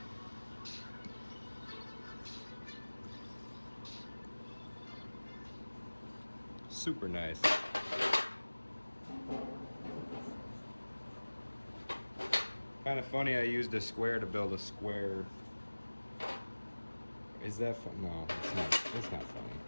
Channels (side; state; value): both; inverted; correlation -1.00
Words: Super nice. Kind of funny I used a square to build a square. Is that fun? No, it's not. It's not funny.